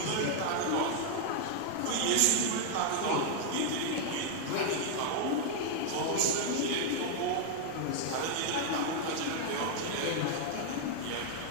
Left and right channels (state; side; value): different; both; correlation 0.00